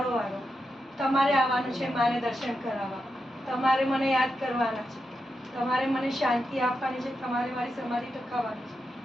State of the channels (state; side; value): normal; both; correlation 0.87